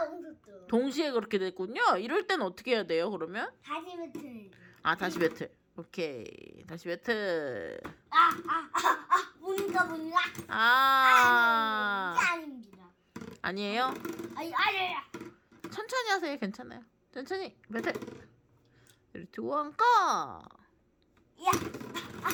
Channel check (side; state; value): both; identical; correlation 1.00